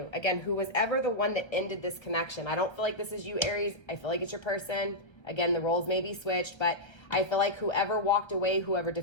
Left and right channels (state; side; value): late; right; 1.3 ms